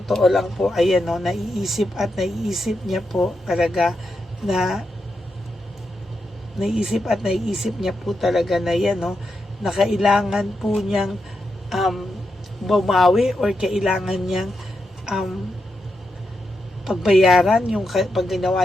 lang po, ayan o, naiisip niya po talaga na naiisip niya po talaga na yan o, na kailangan po niyang bumawi or kailangan niyang pagbayaran yung pag ginawa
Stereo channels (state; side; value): normal; both; correlation 0.85